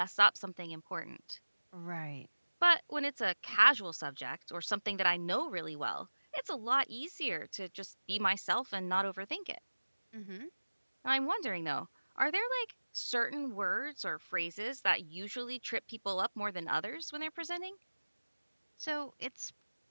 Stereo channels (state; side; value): inverted; both; correlation -1.00